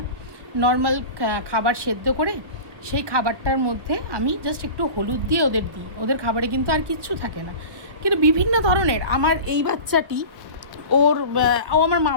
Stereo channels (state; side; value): late; left; 1.1 ms